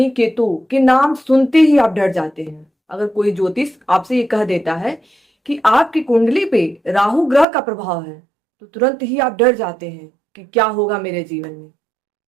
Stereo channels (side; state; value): left; drops out; at 7.5 s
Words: केतु के नाम सुनते ही आप डर जाते हैं। अगर कोई ज्योतिष आपसे ये कह देता है कि आपकी कुंडली पे राहु ग्रह का प्रभाव है तो तुरंत ही आप डर जाते हैं कि क्या होगा मेरे जीवन में।